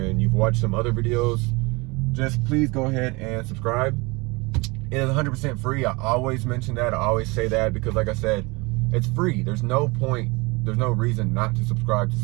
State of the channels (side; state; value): left; quieter; 25.7 dB